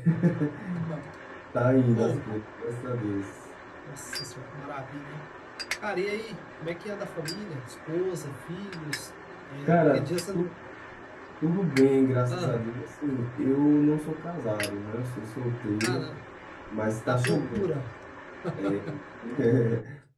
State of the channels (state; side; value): identical; both; correlation 1.00